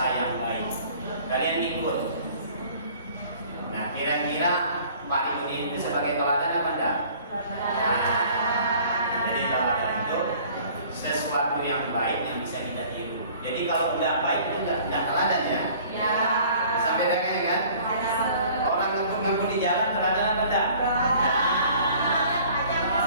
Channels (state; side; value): inverted; both; correlation -0.51